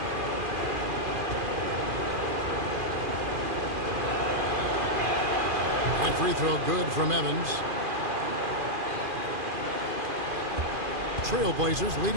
That free throw good from Evans. Trailblazers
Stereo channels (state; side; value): late; left; 2.5 ms